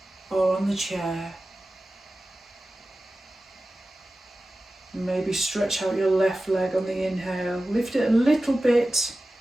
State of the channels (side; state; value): both; normal; correlation 0.95